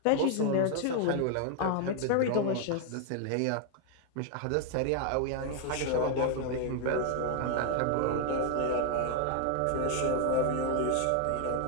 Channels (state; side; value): different; both; correlation 0.00